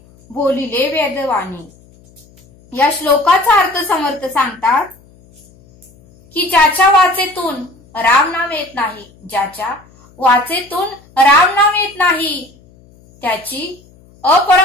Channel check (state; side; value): noise; left; hum, 28 dB below the sound